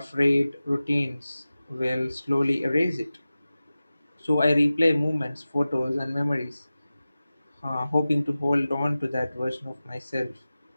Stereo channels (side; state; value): both; inverted; correlation -0.96